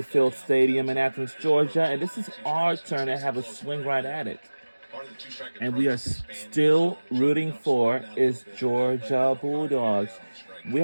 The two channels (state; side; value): inverted; both; correlation -1.00